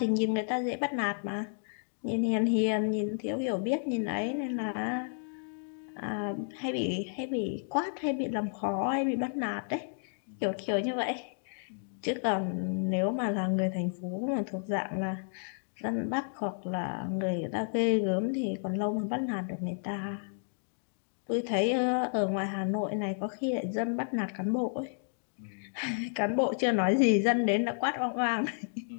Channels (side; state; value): right; silent; digital silence